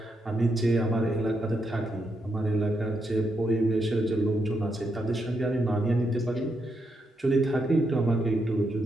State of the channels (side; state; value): both; normal; correlation 0.81